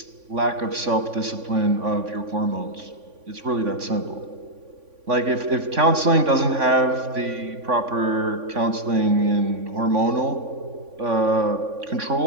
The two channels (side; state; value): left; late; 3.5 ms